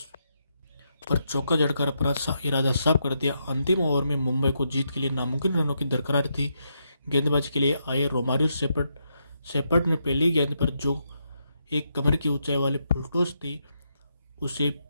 पर चौका जड़कर अपना इरादा साफ कर दिया। अंतिम ओवर में मुंबई को जीत के लिए नामुमकिन रनों की दरकार थी। गेंदबाजी के लिए आए रोमारियो शेपर्ड ने पहली गेंद पर जो एक कमर की ऊंचाई वाली फुल टॉस थी उसे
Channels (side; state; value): both; inverted; correlation -0.81